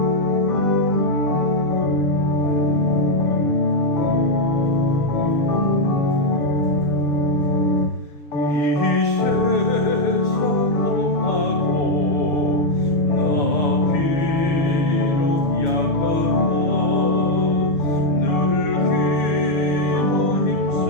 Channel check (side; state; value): right; late; 6.5 ms